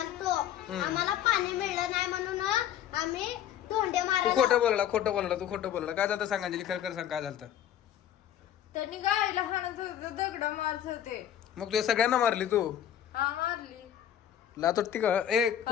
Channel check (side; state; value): right; quieter; 10.5 dB